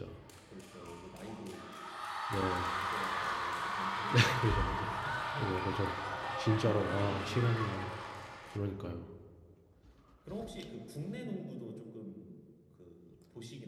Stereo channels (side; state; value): both; identical; correlation 1.00